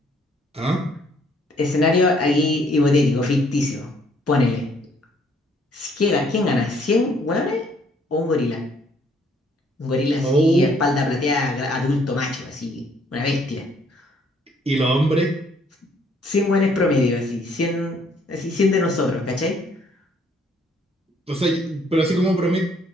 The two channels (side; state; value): both; normal; correlation 0.65